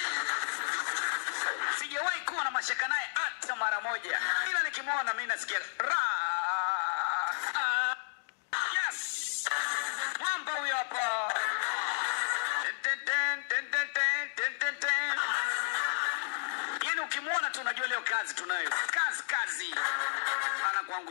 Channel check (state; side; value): silent; right; digital silence